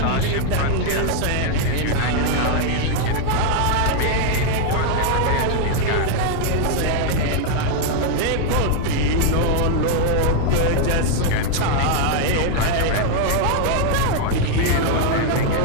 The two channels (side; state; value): both; different; correlation 0.00